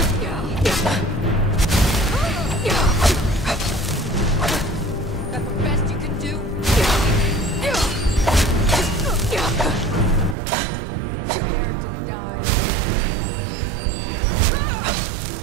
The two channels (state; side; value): drops out; left; at 10.4 s